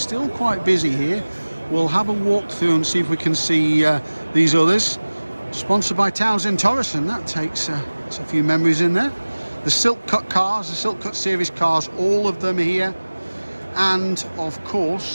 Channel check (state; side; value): inverted; both; correlation -1.00